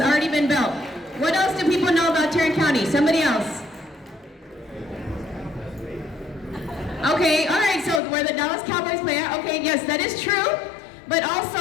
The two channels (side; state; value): right; drops out; at 8.0 s